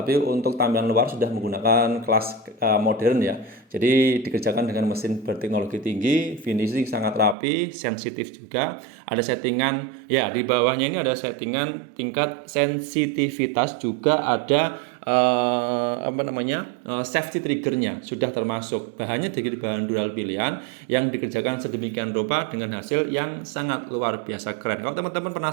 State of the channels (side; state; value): left; drops out; at 7.4 s